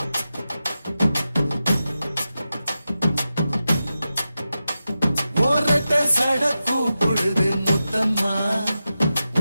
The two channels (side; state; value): both; inverted; correlation -0.91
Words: ஒரட்ட சட கூப்பிடுது முத்தம்மா,